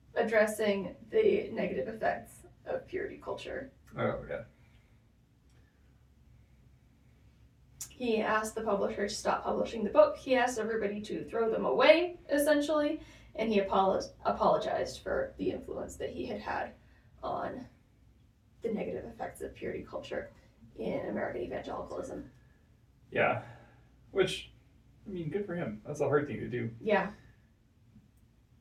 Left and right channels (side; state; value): both; identical; correlation 1.00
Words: addressing the negative effects of purity culture. Oh, yeah. He asked the publisher to stop publishing the book. He asked everybody to throw them away, essentially, and he apologized for the influence that he had had on the negative effects of purity culture in American evangelicalism. Yeah. Which, I mean, good for him. That's a hard thing to do. Yeah.